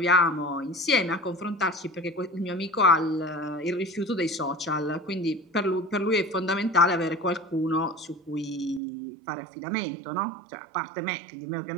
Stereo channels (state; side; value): drops out; left; at 8.8 s